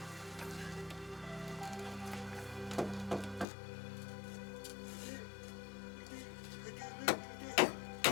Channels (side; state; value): right; drops out; at 3.5 s